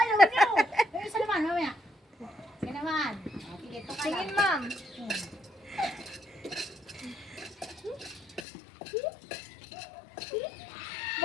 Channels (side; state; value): right; drops out; at 8.5 s